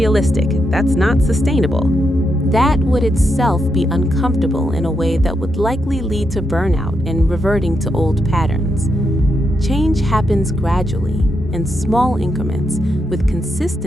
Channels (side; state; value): both; normal; correlation 0.82